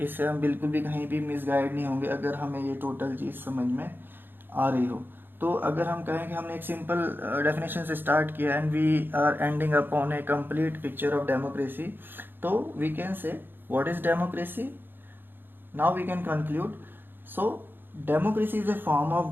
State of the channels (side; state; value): left; late; 0.097 ms